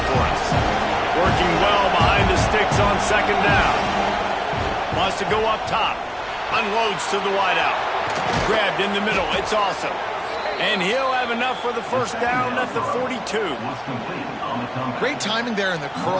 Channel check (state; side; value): identical; both; correlation 1.00